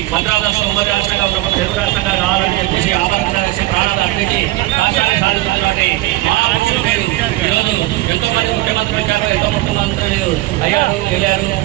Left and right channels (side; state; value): left; quieter; 18.4 dB